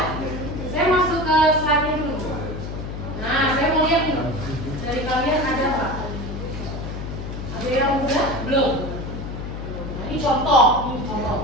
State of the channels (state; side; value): noise; left; hum, 7 dB below the sound